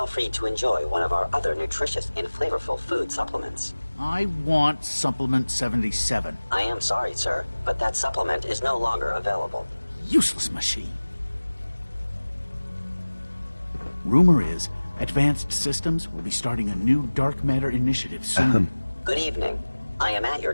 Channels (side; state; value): both; inverted; correlation -1.00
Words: free to enjoy one of our other nutritious and flavorful food supplements. I want Supplement 77. I am sorry, sir, but that supplement is no longer available. Useless machine. Rumor is, Advanced Systems will be starting a new dark matter initiative soon. Good evening. I am at your